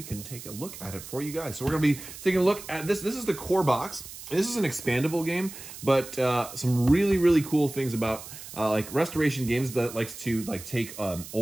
can take a look at it for you guys. So we're going to be taking a look at this. This is the core box. This is an expandable game, but some really, really cool things about like Restoration Games that likes to take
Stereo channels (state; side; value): noise; right; hiss, 13 dB below the sound